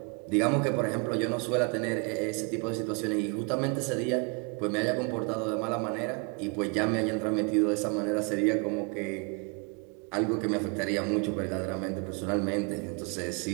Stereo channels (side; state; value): left; quieter; 34.0 dB